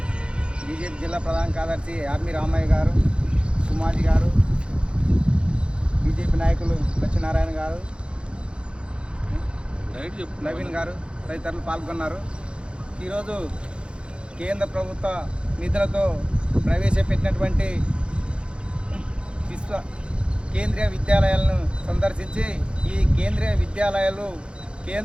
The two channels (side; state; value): left; late; 0.056 ms